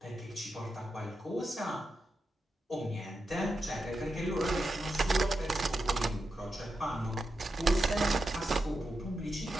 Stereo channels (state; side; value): normal; both; correlation 0.87